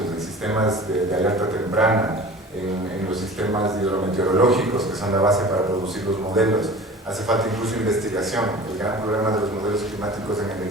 en sistemas de alerta temprana, en los sistemas hidrometeorológicos, que son la base para producir los modelos, hace falta incluso investigación. El gran problema de los modelos climáticos en el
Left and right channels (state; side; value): normal; both; correlation 0.40